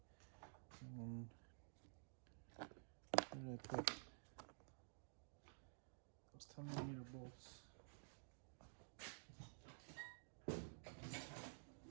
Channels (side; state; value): left; silent; digital silence